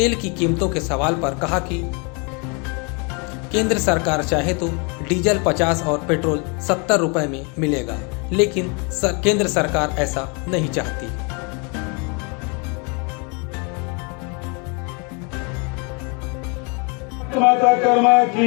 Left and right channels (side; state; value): right; quieter; 33.2 dB